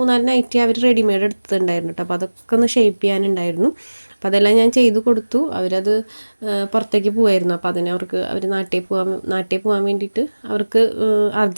നൈറ്റി അവർ റെഡിമെയ്ഡ് എടുത്തിട്ടുണ്ടായിരുന്നു കേട്ടോ. അപ്പോൾ അതൊക്കെ ഒന്ന് ഷേപ്പ് ചെയ്യാനുണ്ടായിരുന്നു. അപ്പോൾ അതെല്ലാം ഞാൻ ചെയ്ത് കൊടുത്തു. അവരത് പുറത്തേക്ക് പോകായിരുന്നു. അപ്പോൾ അവർ നാട്ടിൽ പോകാൻ വേണ്ടിയിട്ട് അവർക്ക്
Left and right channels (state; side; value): inverted; both; correlation -1.00